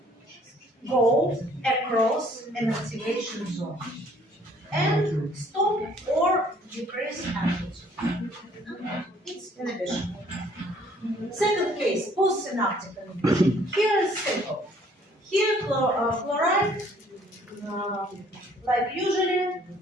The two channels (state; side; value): normal; both; correlation 0.60